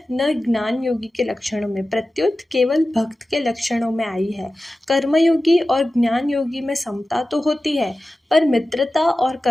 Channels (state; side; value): normal; both; correlation 0.94